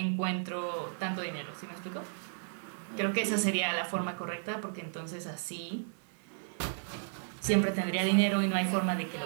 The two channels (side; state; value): left; silent; digital silence